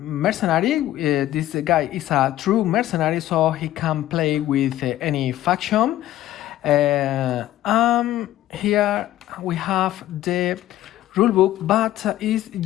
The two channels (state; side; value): quieter; right; 14.0 dB